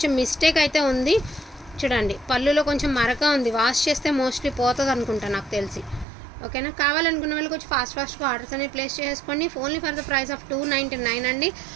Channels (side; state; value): left; drops out; at 6.1 s